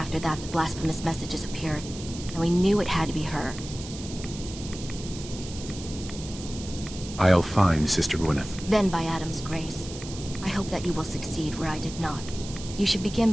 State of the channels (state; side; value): noise; right; hiss, 13 dB below the sound